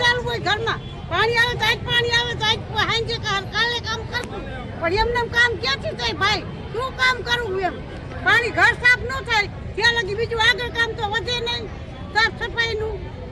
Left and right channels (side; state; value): both; identical; correlation 1.00